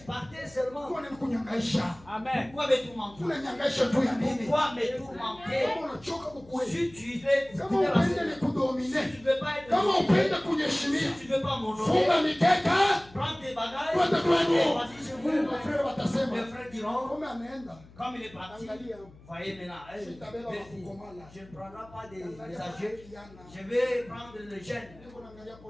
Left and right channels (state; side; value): noise; left; hum, 23 dB below the sound